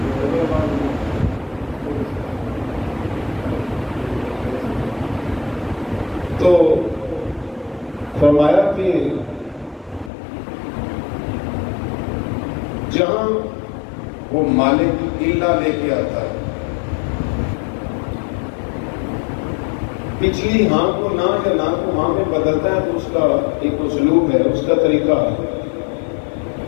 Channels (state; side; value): drops out; right; at 10.1 s